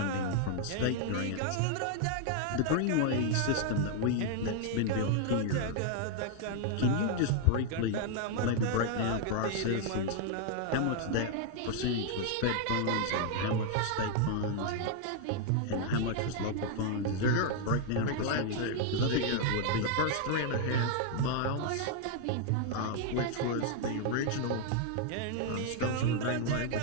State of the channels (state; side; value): different; both; correlation 0.00